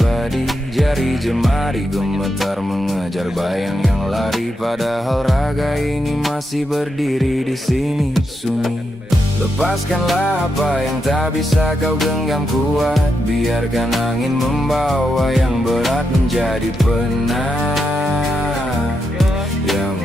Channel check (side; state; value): both; normal; correlation 0.84